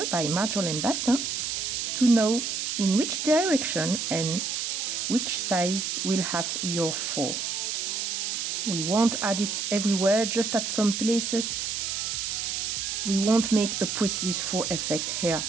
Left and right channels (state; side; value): noise; right; hiss, 2 dB below the sound